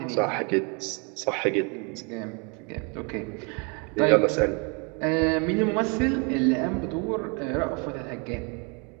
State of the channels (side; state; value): left; quieter; 33.7 dB